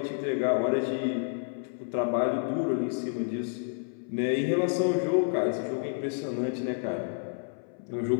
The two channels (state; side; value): silent; right; 58 dB below the other